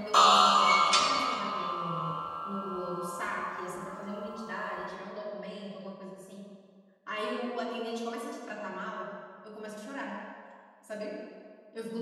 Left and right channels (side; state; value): both; identical; correlation 1.00